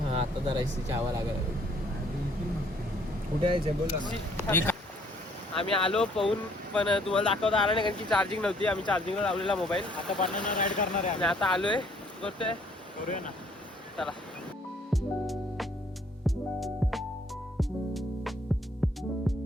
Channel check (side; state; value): both; normal; correlation 0.62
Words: आता जरा एसीची हवा लागायला. कुठे यायचं बोला ना. आम्ही आलो पाहून, पण तुम्हाला दाखवता आला नाही कारण की चार्जिंग नव्हती. आम्ही चार्जिंगला लावलेला मोबाईल. आता बनाना राईड करणार आहे आणि आता आलोय, करतोय. करूया ना. चला.